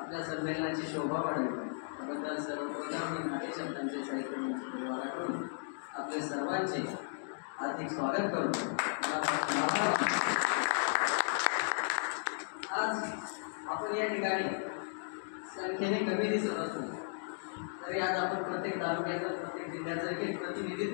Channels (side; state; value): right; silent; digital silence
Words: संमेलनाची शोभा वाढेल त्याबद्दल सर्वप्रथम मी नाट्यशब्दांचे साहित्य मंच परिवाराकडून आपले सर्वांचे हार्दिक स्वागत करतो. आज आपण या ठिकाणी संख्येने कमी दिसत असतो तरी आज आपण प्रत्येक तालुक्याचं, प्रत्येक जिल्ह्याचं एक